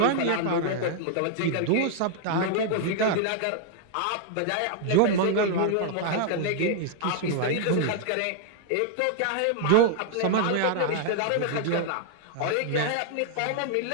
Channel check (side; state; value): both; different; correlation 0.00